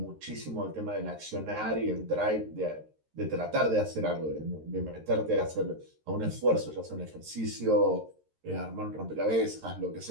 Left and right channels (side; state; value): left; late; 13 ms